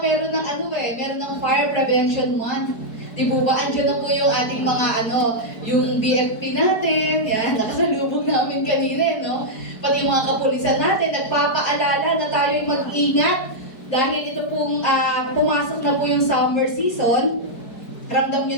meron ng meron ng Fire Prevention Month. Di po ba? Andiyan na po yung ating mga yung BFP natin. Yan, nakasalubong namin kanina, no? Pati yung mga kapulisan natin, nagpapaalala na tayo'y mag-ingat. Dahil ito pong pumasok na po yung summer season. Ramdam nyo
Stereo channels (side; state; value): right; late; 4.6 ms